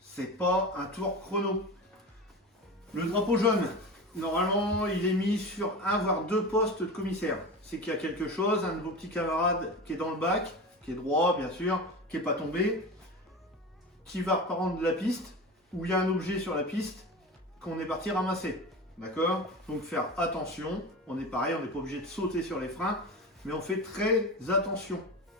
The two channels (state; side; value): normal; both; correlation 0.29